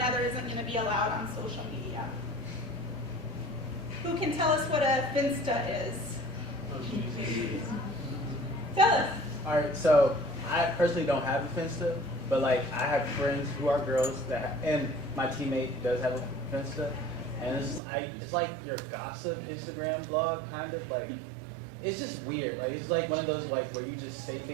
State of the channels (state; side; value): drops out; left; at 17.8 s